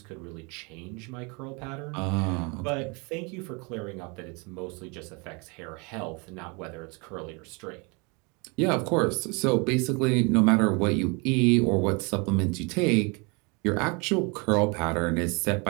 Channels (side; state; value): left; quieter; 30.5 dB